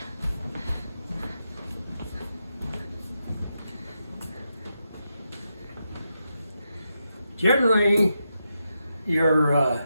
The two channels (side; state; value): both; inverted; correlation -0.86